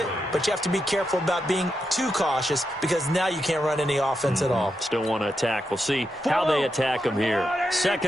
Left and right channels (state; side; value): normal; both; correlation 0.85